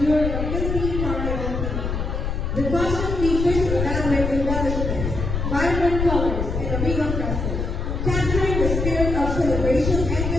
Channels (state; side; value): noise; left; rumble, 2 dB below the sound